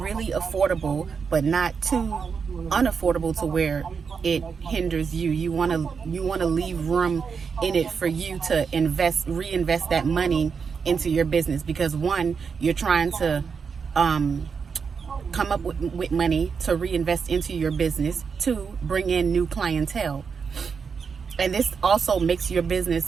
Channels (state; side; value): quieter; left; 5.9 dB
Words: but not too unaffordable to where it hinders you. You want to leave room in it for you to reinvest that money into your business, because one, you're trying to come up with money to reinvest into your business. 2, bring in new clientele. And this also makes your